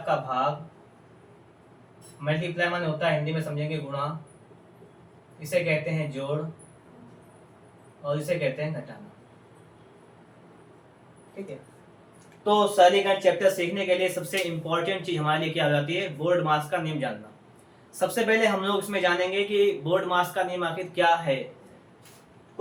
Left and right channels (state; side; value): identical; both; correlation 1.00